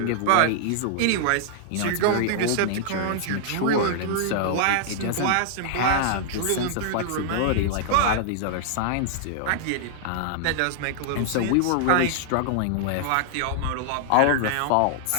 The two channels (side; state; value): both; different; correlation -0.01